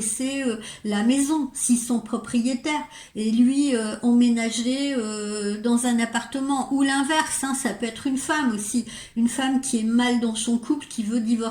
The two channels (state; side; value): identical; both; correlation 1.00